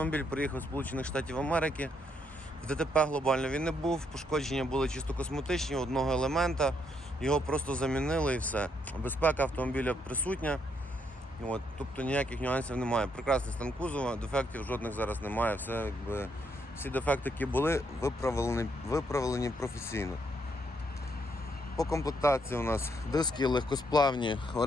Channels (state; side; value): normal; both; correlation 0.75